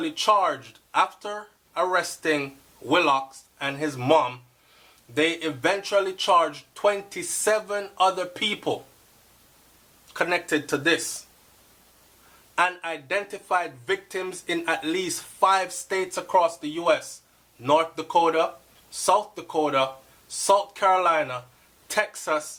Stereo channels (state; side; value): identical; both; correlation 1.00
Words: charged, after arresting Willox and his mom, they eventually charged 27 other people connected to this, and identified victims in at least 5 states across the U.S. North Dakota, South Dakota, South Carolina,